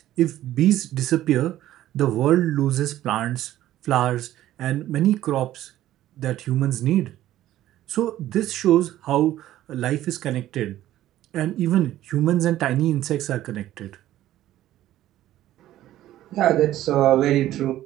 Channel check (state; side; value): quieter; left; 13.7 dB